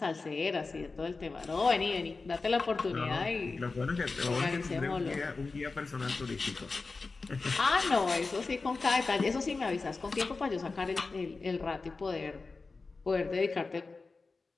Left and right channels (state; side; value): quieter; right; 4.0 dB